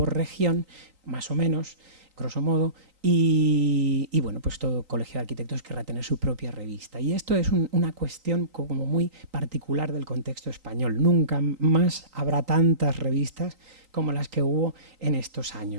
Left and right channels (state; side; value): late; left; 3.9 ms